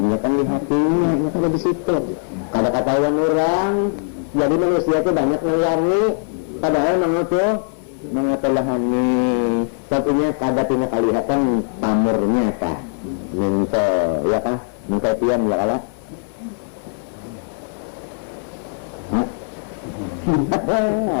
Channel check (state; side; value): silent; right; 65 dB below the other